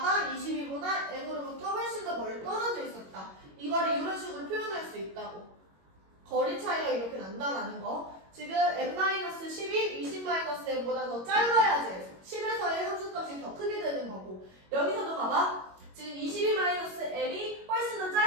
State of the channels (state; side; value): late; left; 21 ms